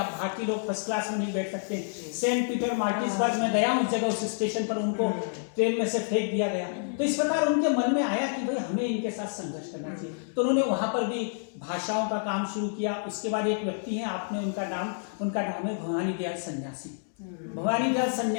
भारतीय लोग फर्स्ट क्लास में नहीं बैठ सकते। सेंट पीटर मार्टिसबर्ग में गया उस जगह, उस स्टेशन पर उनको ट्रेन में से फेंक दिया गया। तो इस प्रकार उनके मन में आया कि भाई हमें इनके साथ संघर्ष करना चाहिए। तो उन्होंने वहां पर भी भाषाओं का काम शुरू किया। उसके बाद एक व्यक्ति है, आपने उनका नाम है भवानी दयाल सन्यासी। भवानी दयाल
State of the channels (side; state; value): right; silent; digital silence